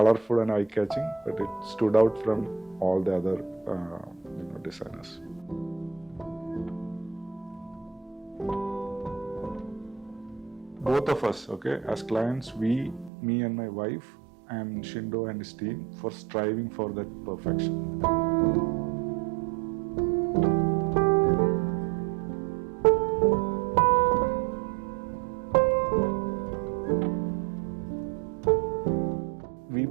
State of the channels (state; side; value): drops out; left; at 13.1 s